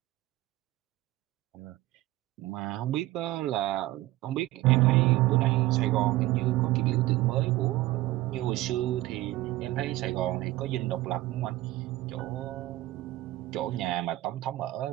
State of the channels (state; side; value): quieter; left; 17.2 dB